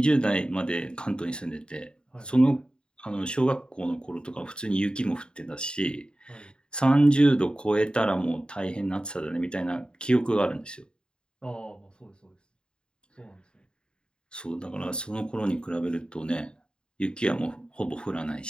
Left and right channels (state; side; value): late; right; 0.050 ms